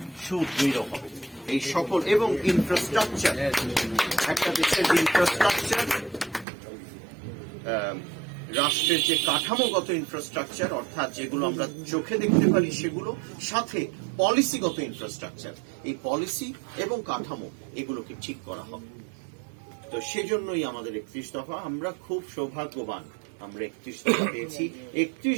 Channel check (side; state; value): left; drops out; at 6.5 s